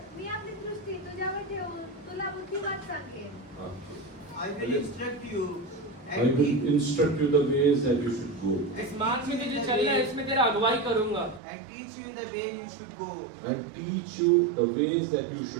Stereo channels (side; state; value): left; drops out; at 11.4 s